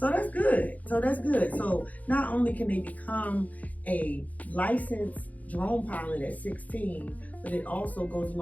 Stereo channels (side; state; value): right; late; 0.075 ms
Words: that's good. So not only can they become a licensed drone pilot at 16, but it also goes